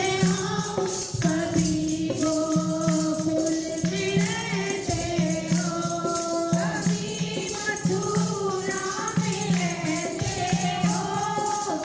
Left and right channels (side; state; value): both; identical; correlation 1.00